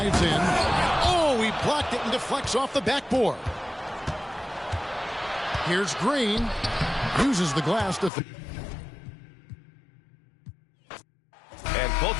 in. Oh, he blocked it and deflects off the backboard. Here's Green. Uses the glass to... And both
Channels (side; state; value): right; drops out; at 8.1 s